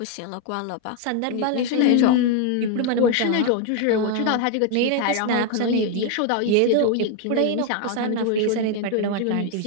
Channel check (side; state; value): both; different; correlation 0.01